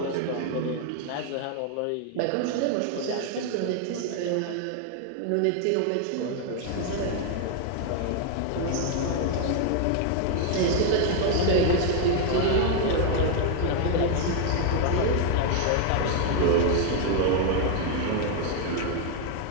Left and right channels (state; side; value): different; both; correlation 0.00